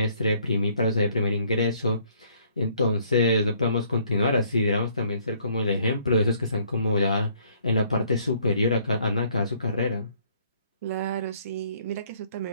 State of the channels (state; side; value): inverted; both; correlation -0.63